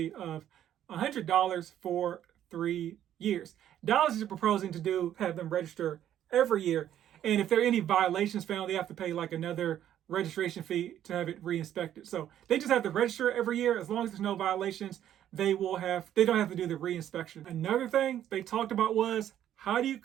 of $100 for 3 years. Dallas is proposing to have them register every year. And if there are any violations found, they have to pay like another registration fee to have it re-inspected. So they just have to register every year. As long as there's no violations, they don't have to do the re-inspection. Another thing they talked about was, how do you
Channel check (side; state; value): left; quieter; 11.1 dB